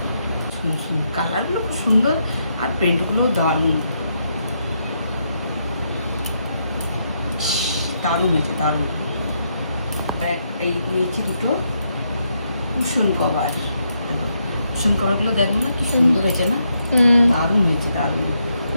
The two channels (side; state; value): both; inverted; correlation -0.79